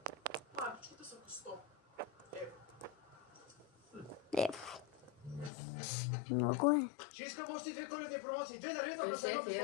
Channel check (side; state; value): right; drops out; at 5.5 s